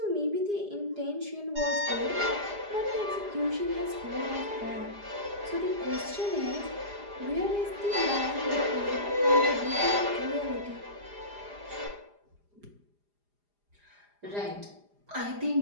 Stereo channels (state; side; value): late; left; 4.9 ms